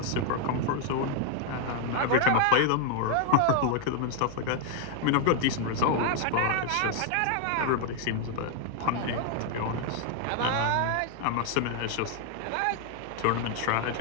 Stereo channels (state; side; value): different; both; correlation 0.00